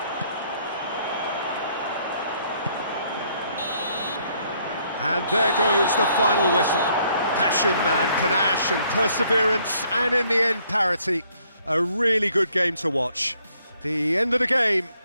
And there goes the final whistle. Passion and panache and perseverance, and in the end, parity. A really good game to watch. The end of the game.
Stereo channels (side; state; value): both; inverted; correlation -0.67